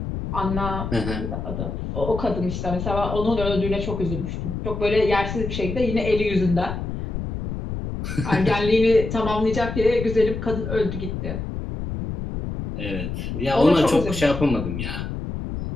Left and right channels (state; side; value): noise; left; rumble, 5 dB below the sound